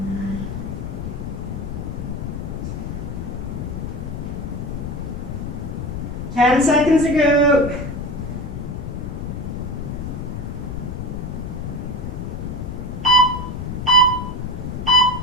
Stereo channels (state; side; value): noise; left; rumble, 5 dB below the sound